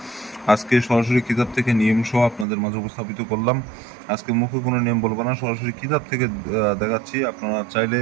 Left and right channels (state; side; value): drops out; left; at 2.5 s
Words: আজকে সরাসরি কিতাব থেকে নিয়ম সহ আপনাদের মাঝে উপস্থাপিত করলাম। আজকে মুখে কোনো নিয়ম বলবো না, সরাসরি কিতাব থেকে দেখাচ্ছি। আপনারা চাইলে